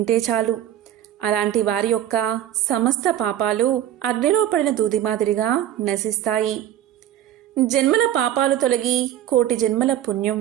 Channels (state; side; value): quieter; left; 11.7 dB